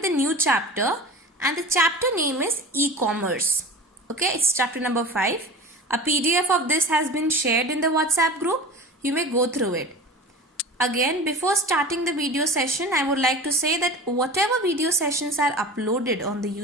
the new chapter, and the chapter name is e-commerce. Okay, it's chapter number 5. A PDF of this has been shared in the WhatsApp group. You may go through it. Again, before starting the video session, I would like to say that whatever video sessions are uploaded on the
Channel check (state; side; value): normal; both; correlation 0.35